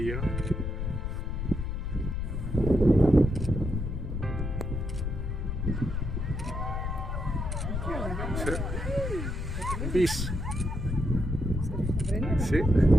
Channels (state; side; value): noise; left; rumble, 3 dB below the sound